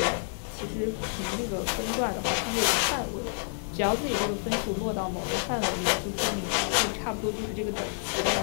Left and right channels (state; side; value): silent; right; digital silence